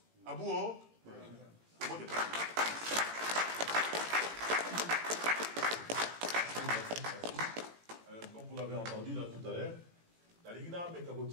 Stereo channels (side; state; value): left; late; 18 ms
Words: Abouo, comme vous l'avez entendu là tout à l'heure, la Ligna